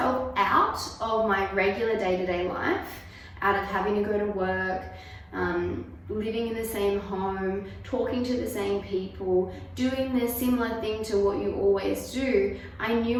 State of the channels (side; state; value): both; identical; correlation 1.00